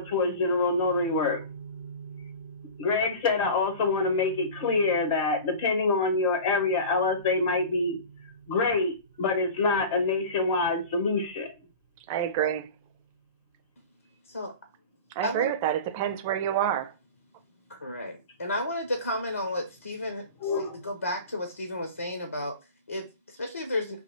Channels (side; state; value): both; inverted; correlation -0.34